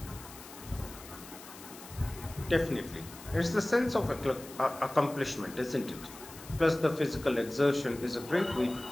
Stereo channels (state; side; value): noise; left; hiss, 17 dB below the sound